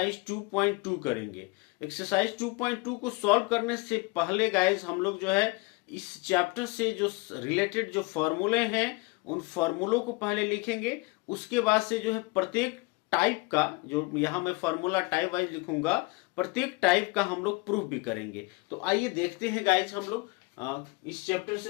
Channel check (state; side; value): quieter; right; 25.0 dB